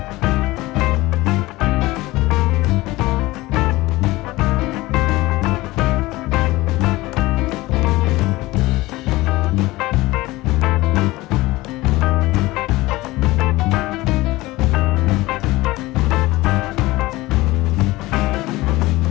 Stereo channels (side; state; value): right; quieter; 19.6 dB